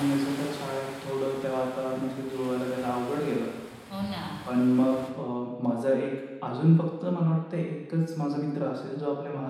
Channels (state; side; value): identical; both; correlation 1.00